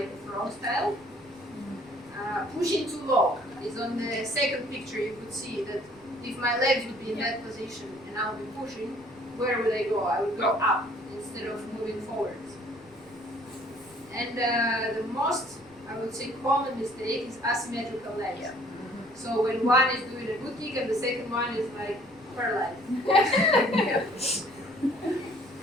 a frog style. Pushing too low is on the second picture. You could see that if my legs would be in that position and I would be pushing, where would I go? I would go up instead of moving forwards. And the most, I would say, common mistake is asymmetrical legs. Yeah. So when one is doing a good kick and the second one is like paralyzed.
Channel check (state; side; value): noise; left; rumble, 27 dB below the sound